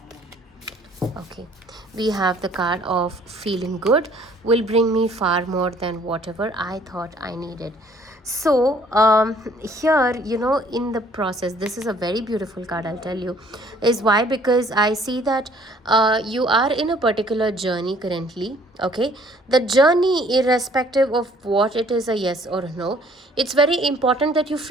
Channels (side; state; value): both; normal; correlation 0.59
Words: Okay, we have the card of feeling good will bring me far more than whatever I thought I needed. So here, in the process, this is a very beautiful card, I'll tell you. Is why? Because I see that you are in a particular journey currently. Okay, the journey, irrespective of what it is, a yes or a no, it's very important that you